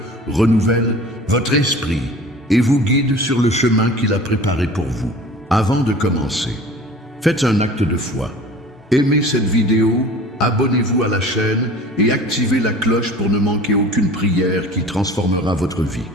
renouvelle votre esprit et vous guide sur le chemin qu'il a préparé pour vous. Avant de commencer, faites un acte de foi. Aimez cette vidéo, abonnez-vous à la chaîne et activez la cloche pour ne manquer aucune prière qui transformera votre vie.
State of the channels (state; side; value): normal; both; correlation 0.43